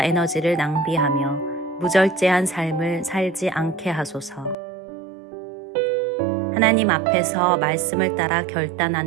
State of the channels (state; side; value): drops out; left; at 4.5 s